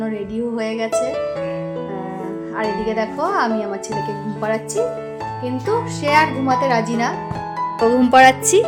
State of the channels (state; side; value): identical; both; correlation 1.00